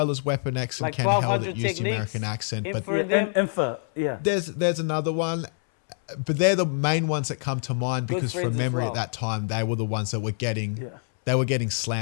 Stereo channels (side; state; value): right; silent; 61 dB below the other